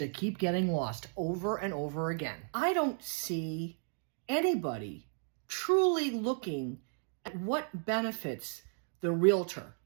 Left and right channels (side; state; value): left; silent; 55 dB below the other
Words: keep getting lost over and over again. I don't see anybody truly looking at what benefits the realtor